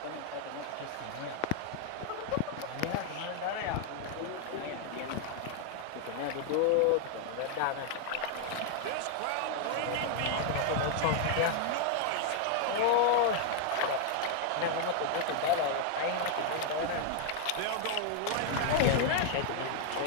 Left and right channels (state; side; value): different; both; correlation 0.00